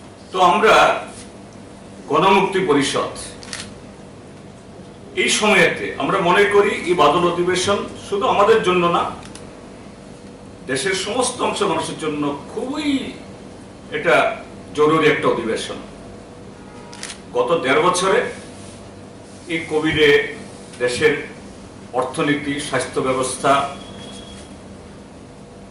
তো আমরা গণমুক্তি পরিষদ এই সময়েতে আমরা মনে করি এই বাদল অধিবেশন শুধু আমাদের জন্য না, দেশের সমস্ত অংশ মানুষের জন্য খুবই এটা জরুরি একটা অধিবেশন। গত 1.5 বছরে এই কোভিডে দেশের অর্থনীতি, স্বাস্থ্য ব্যবস্থা,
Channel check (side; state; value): both; identical; correlation 1.00